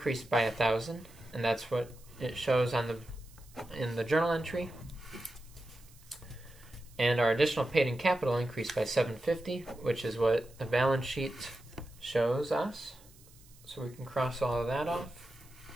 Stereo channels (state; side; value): noise; right; hiss, 25 dB below the sound